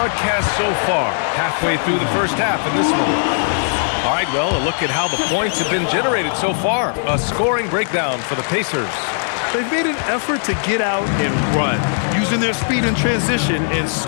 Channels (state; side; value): silent; right; digital silence